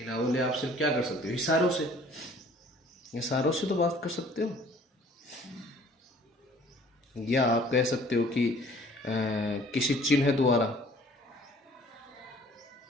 बोले आप सिर्फ क्या कर सकते हो, इशारों से, इशारों से तो बात कर सकते हो। या आप कह सकते हो कि किसी चिन्ह द्वारा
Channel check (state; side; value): normal; both; correlation 0.54